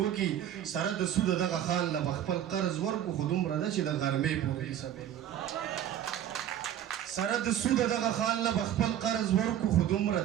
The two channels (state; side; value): quieter; left; 10.9 dB